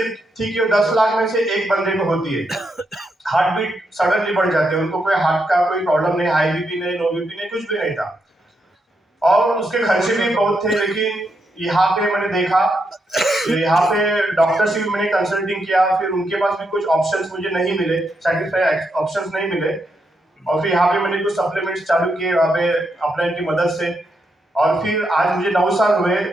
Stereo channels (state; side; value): normal; both; correlation 0.81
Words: थी कि 10 लाख में से एक बंदे को होती है। हार्ट बीट सडनली बढ़ जाते हैं, उनको कोई हार्ट का कोई प्रॉब्लम नहीं, हाई बीपी नहीं, लो बीपी नहीं, कुछ भी नहीं था, और उसके खर्चे भी बहुत थे। लेकिन यहाँ पे मैंने देखा, यहाँ पे डॉक्टर से भी मैंने कंसल्टिंग किया, फिर उनके पास भी कुछ ऑप्शंस मुझे नहीं मिले, सेटिस्फाई ऑप्शंस नहीं मिले, और फिर यहाँ पे मैंने कुछ सप्लीमेंट्स चालू किए वहाँ पे अपलाइन की मदद से, और फिर आज मुझे 9 साल हुए,